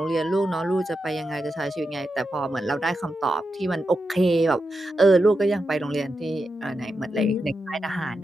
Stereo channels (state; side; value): normal; both; correlation 0.88